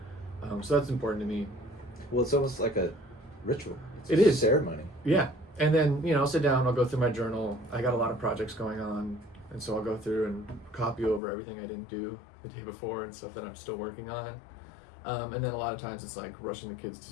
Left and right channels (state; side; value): drops out; right; at 11.2 s